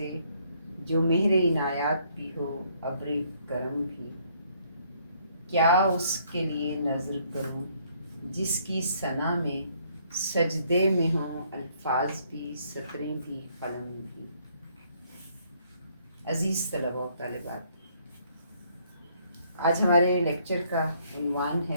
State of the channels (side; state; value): both; inverted; correlation -0.66